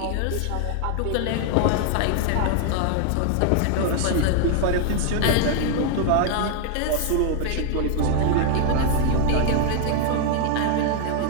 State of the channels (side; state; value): both; different; correlation 0.00